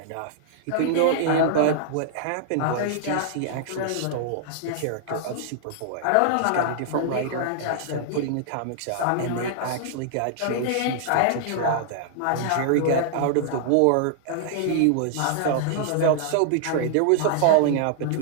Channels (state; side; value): different; both; correlation -0.01